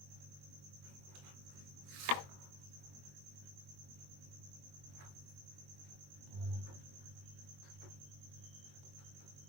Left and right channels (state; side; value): late; left; 21 ms